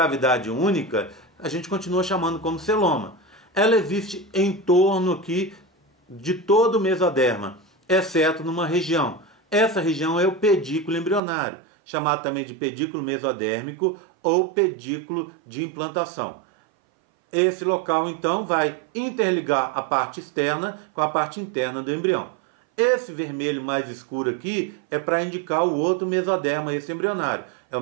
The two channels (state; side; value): drops out; left; at 11.2 s